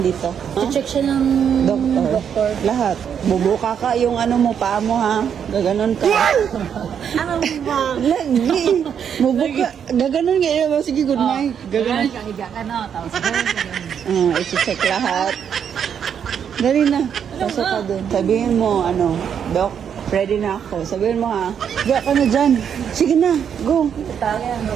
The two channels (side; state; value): left; quieter; 8.0 dB